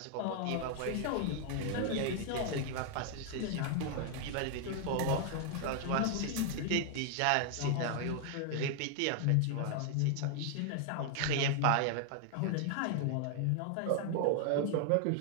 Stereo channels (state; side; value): different; both; correlation 0.00